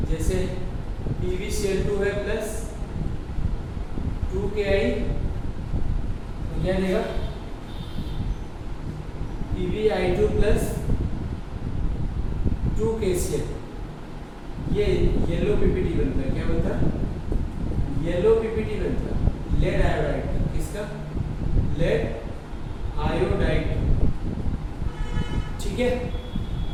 जैसे PbCl2 है प्लस 2Ki, तो क्या देगा? PbI2 plus 2KCl। ये येलो पीपीटी बनता है। क्या बनता है? येलो पीपीटी बनता है। लेड आयोडाइड का। किसका? Lead iodide. ठीक है,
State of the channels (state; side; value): identical; both; correlation 1.00